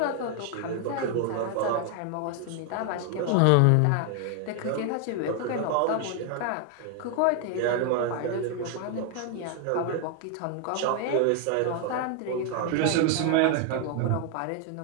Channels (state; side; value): different; both; correlation 0.00